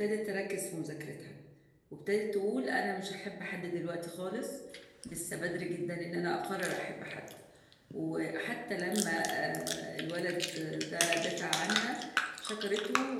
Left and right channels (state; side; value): identical; both; correlation 1.00